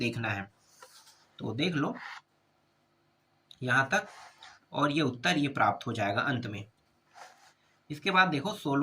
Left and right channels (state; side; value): identical; both; correlation 1.00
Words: है। तो देख लो यहाँ तक, और ये उत्तर ये प्राप्त हो जाएगा अंत में। इसके बाद देखो